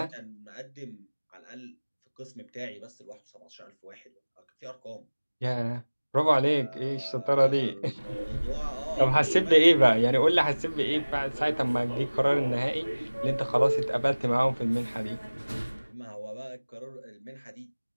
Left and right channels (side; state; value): both; inverted; correlation -1.00